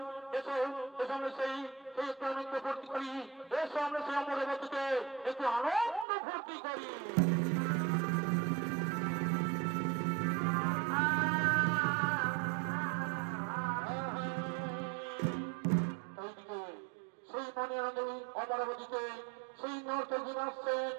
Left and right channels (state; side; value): drops out; left; at 6.1 s